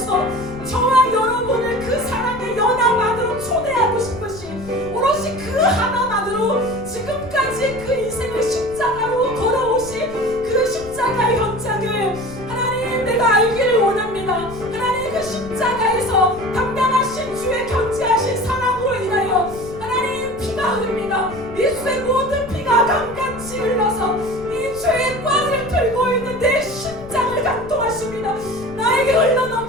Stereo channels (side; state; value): left; noise; rumble, 16 dB below the sound